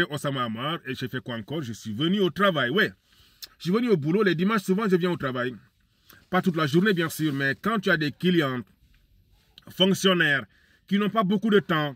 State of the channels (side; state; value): both; identical; correlation 1.00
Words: Osama Hamar et j'ai fait quoi encore? Je suis venu au travail, ouais. Je suis venu au boulot. Les dimanches, souvent, je viens au travail. Pas toute la journée, bien sûr, mais quand tu as des clients, fonctionnaires, qui n'ont pas beaucoup de temps,